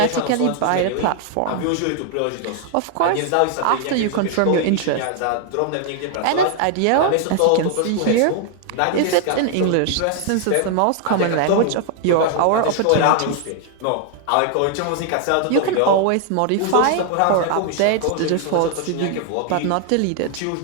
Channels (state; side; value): different; both; correlation 0.00